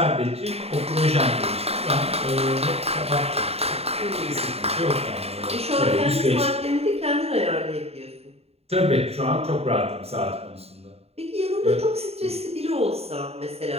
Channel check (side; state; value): left; late; 0.30 ms